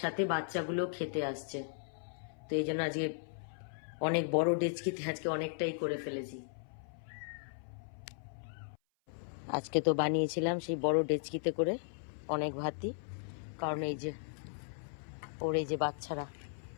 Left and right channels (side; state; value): right; silent; 53 dB below the other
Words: সাথে বাচ্চাগুলো খেতে আসছে, তো এই জন্য আজকে অনেক বড় ডেচকিতে আজকে অনেকটাই করে ফেলেছি। আজকে তো বানিয়েছিলাম সেই বড় ডেচকিতে করে অনেক ভাতই, কারণ এই যে ওর এই যে বাচ্চারা